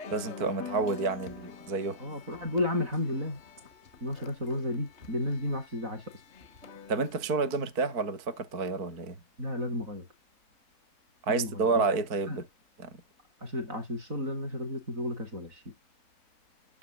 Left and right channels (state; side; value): late; left; 4.5 ms